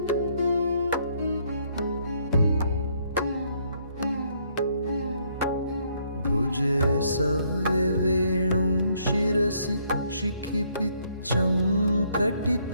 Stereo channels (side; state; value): both; inverted; correlation -0.69